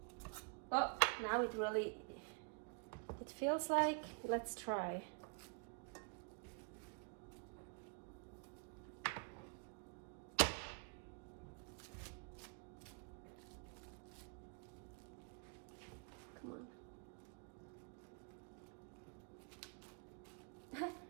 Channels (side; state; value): left; quieter; 36.2 dB